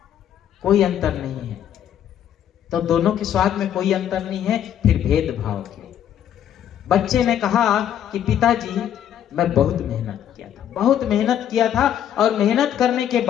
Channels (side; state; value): right; quieter; 10.2 dB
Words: कोई अंतर नहीं है। तो दोनों के स्वाद में कोई अंतर नहीं है, फिर भेदभाव क्यों? बच्चे ने कहा कि पिताजी मैं बहुत मेहनत किया था और मेहनत करने के